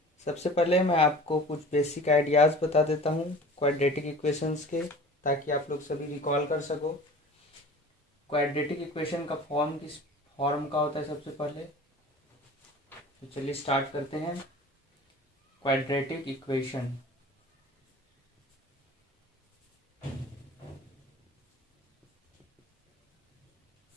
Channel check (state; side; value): normal; both; correlation 0.41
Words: सबसे पहले मैं आपको कुछ बेसिक आइडियाज़ बता देता हूँ क्वाड्रेटिक इक्वेशंस के, ताकि आप लोग सभी रिकॉल कर सको। क्वाड्रेटिक इक्वेशन का फॉर्म किस फॉर्म का होता है सबसे पहले, तो चलिए स्टार्ट करते हैं। क्वाड्रेटिक इक्वेशन